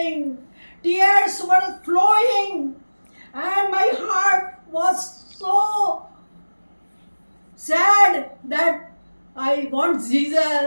Tears were flowing, and my heart was so sad that I want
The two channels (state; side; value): inverted; both; correlation -1.00